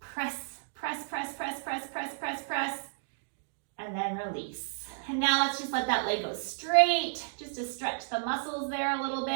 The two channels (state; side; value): silent; left; digital silence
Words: press, press, press, press, press, press, press, and then release. And now let's just let that leg go straight, just to stretch the muscles there a little